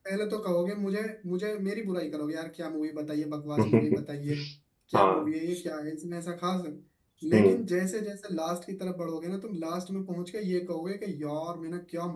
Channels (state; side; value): identical; both; correlation 1.00